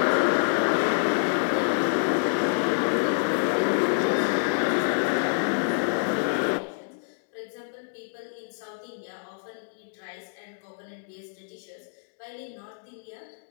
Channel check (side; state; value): right; silent; digital silence